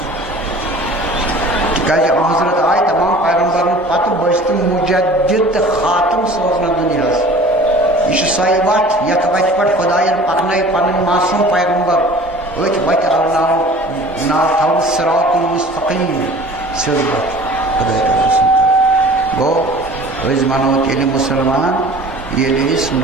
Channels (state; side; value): normal; both; correlation 0.45